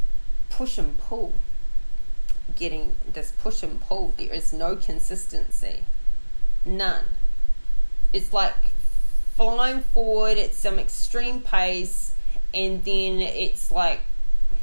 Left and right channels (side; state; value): both; inverted; correlation -1.00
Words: push and pull. Getting this push and pull. There is no consistency. None. It's like flying forward at some extreme pace, and then it's like